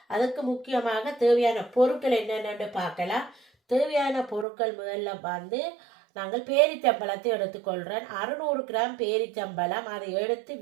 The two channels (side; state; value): left; drops out; at 4.5 s